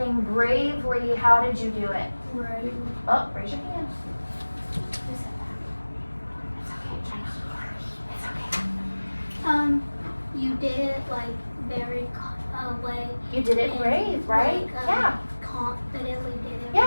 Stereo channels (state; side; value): inverted; both; correlation -1.00